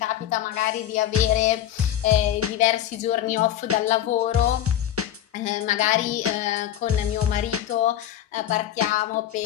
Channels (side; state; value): right; quieter; 11.4 dB